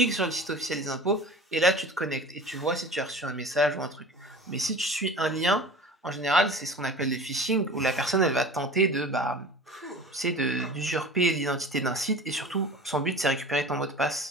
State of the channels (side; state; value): both; normal; correlation 0.38